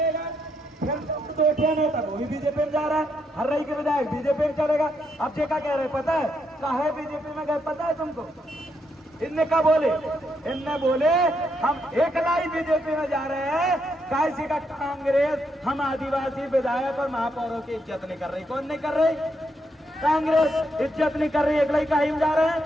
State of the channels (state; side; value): normal; both; correlation 0.78